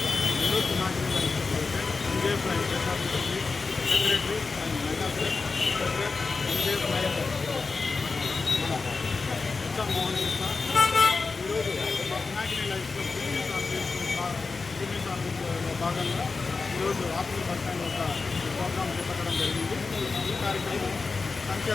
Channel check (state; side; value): quieter; right; 4.3 dB